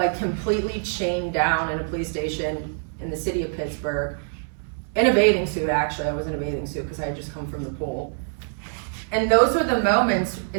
completely chained down in a police station in the city of Pittsburgh, in a bathing suit. Actually, I was in a bathing suit because I had just come from the pool. And those were the moments,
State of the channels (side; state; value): left; silent; digital silence